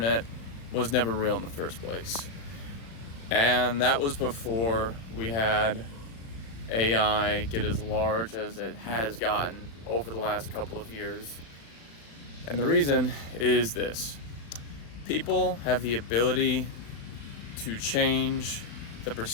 was never real in the first place. And that was before we had AI get as large as it has gotten over the last couple of years. And the reason is this: people have the ability to change the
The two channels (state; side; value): late; right; 36 ms